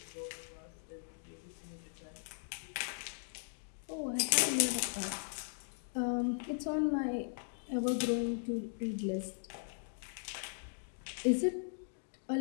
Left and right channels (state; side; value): silent; right; digital silence